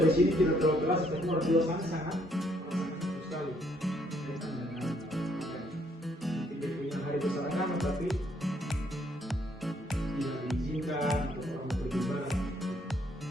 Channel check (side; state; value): both; normal; correlation 0.69